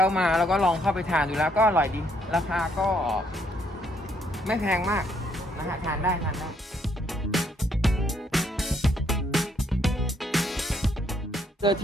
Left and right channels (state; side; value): normal; both; correlation 0.70